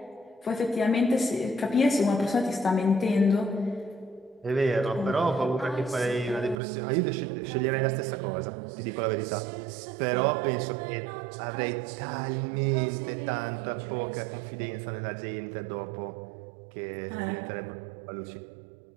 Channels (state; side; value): drops out; left; at 6.6 s